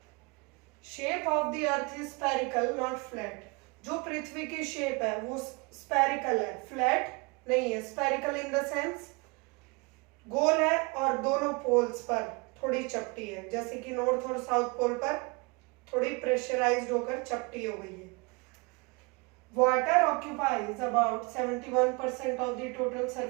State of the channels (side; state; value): left; quieter; 29.7 dB